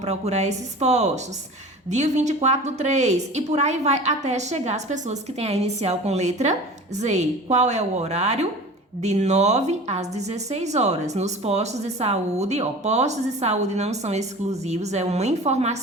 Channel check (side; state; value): both; normal; correlation 0.38